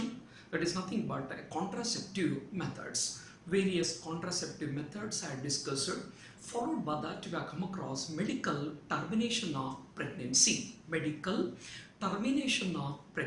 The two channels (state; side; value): identical; both; correlation 1.00